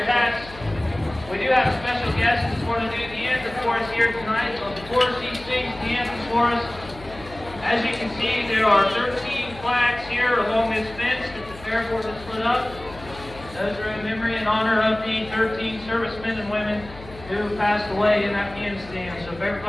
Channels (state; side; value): noise; left; hum, 17 dB below the sound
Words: hats. We do have special guests who want to do the anthem for us here tonight. So before she sings the anthem for us, as you can see, there are 13 flags here along this fence that the fair board has put up. Those are in memory and honor of the 13 servicemen and women who passed away in Afghanistan. So if